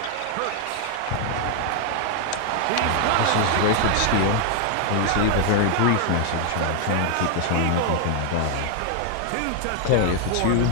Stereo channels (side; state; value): both; different; correlation 0.00